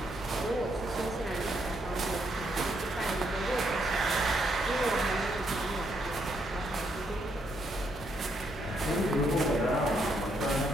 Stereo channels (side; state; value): both; normal; correlation 0.75